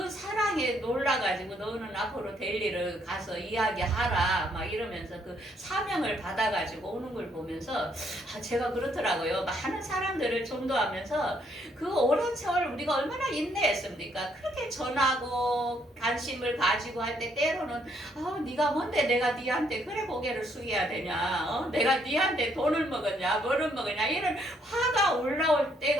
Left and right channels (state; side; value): normal; both; correlation 0.70